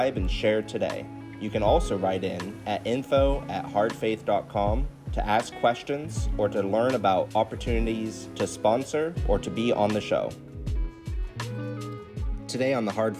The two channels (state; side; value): identical; both; correlation 1.00